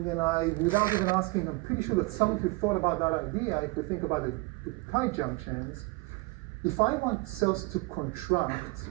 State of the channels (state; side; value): quieter; left; 24.8 dB